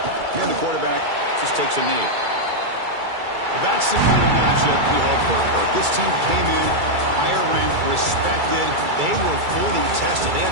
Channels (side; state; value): left; late; 2.3 ms